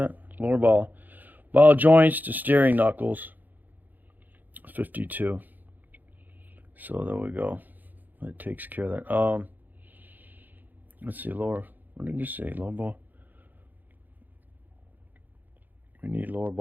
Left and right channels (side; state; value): left; late; 0.085 ms